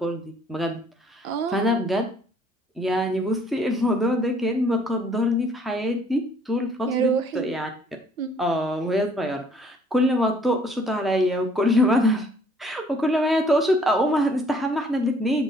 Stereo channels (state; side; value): normal; both; correlation 0.61